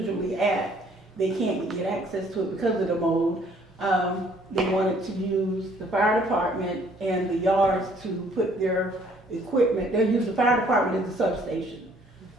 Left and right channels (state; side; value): normal; both; correlation 0.61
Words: at. They can't get access to it because of the mold. They wanted to use the fire department and the yards to put their equipment. They'll use the fire department as a substation.